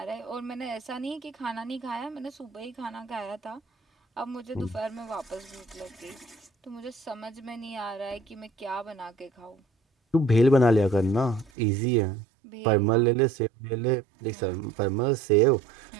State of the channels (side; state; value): left; drops out; at 11.5 s